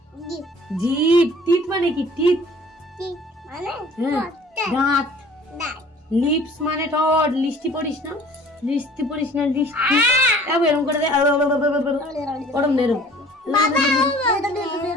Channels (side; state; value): both; normal; correlation 0.50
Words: জিভ। টিথ মানে কি? টিথ দাঁত। লিপস মানে ঠোঁট। লিস্টি পড়িস না, লিস্টি পড়িস না, লিস্টি এরকম করে দে। ওরম নেরম।